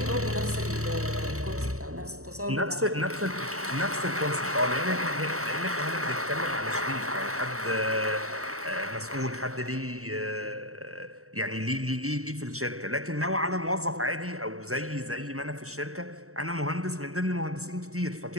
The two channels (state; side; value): late; left; 0.64 ms